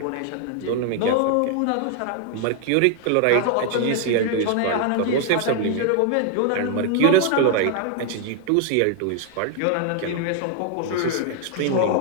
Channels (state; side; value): different; both; correlation 0.00